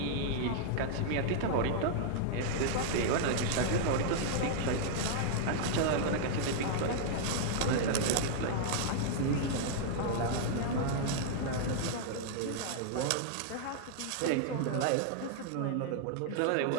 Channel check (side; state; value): both; different; correlation -0.01